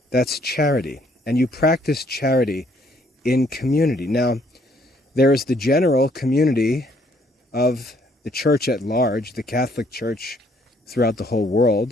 That's charity. And you practice charity in community. Now, there is the general community of the church at large, the Catholic Church throughout the whole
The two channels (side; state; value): both; normal; correlation 0.66